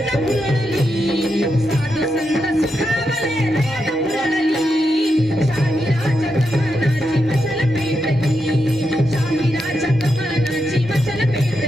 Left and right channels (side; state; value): both; normal; correlation 0.85